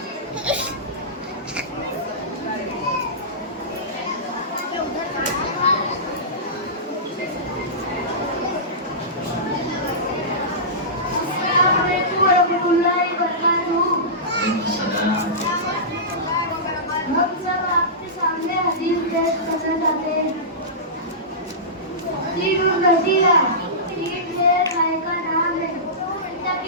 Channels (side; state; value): both; normal; correlation -0.18